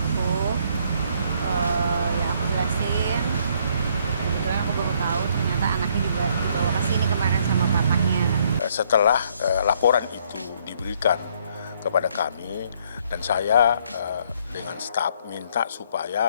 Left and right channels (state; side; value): inverted; both; correlation -0.66